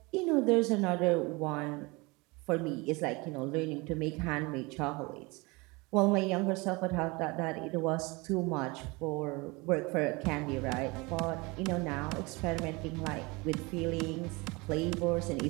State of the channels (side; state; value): left; quieter; 25.6 dB